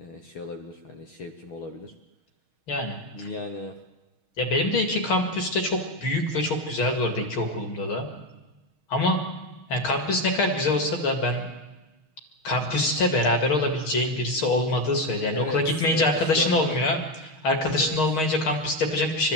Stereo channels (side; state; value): right; late; 6.4 ms